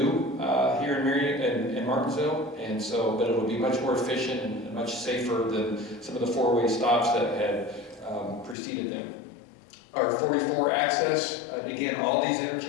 here in Marion and Martinsville. And so, but it'll be much more efficient and much safer than some of the four-way stops that had preceded them. Our 44 access, again, all these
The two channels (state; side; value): drops out; right; at 8.6 s